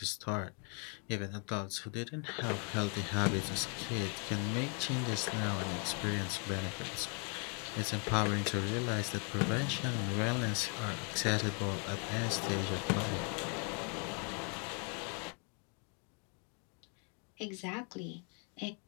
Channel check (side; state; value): right; quieter; 38.1 dB